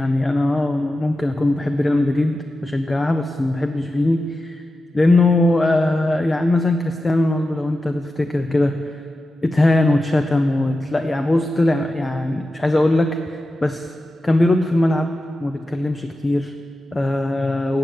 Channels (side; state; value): both; normal; correlation 0.92